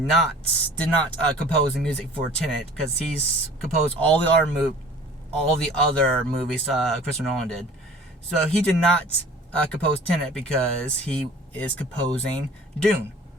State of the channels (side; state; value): both; normal; correlation 0.46